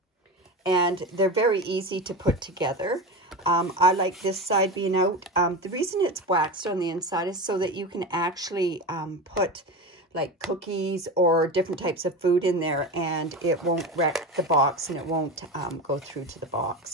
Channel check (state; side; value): normal; both; correlation 0.24